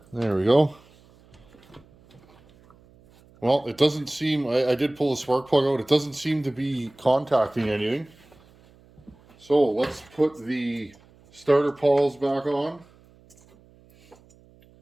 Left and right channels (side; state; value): right; noise; hum, 28 dB below the sound